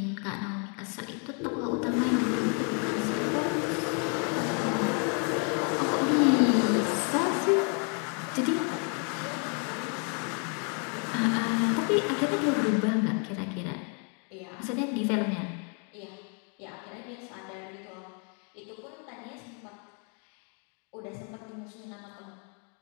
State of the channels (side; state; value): right; quieter; 39.4 dB